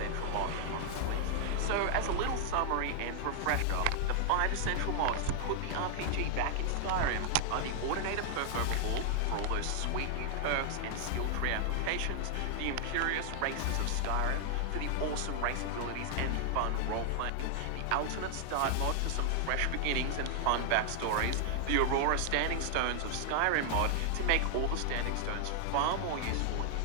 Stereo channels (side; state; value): both; different; correlation 0.00